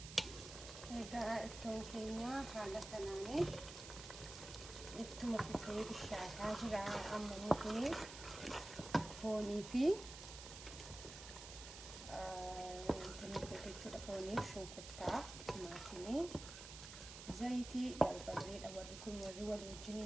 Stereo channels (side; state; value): right; noise; hiss, 11 dB below the sound